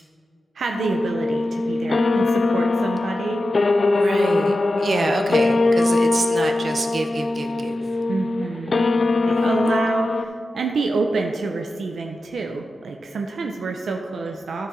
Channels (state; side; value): normal; both; correlation 0.92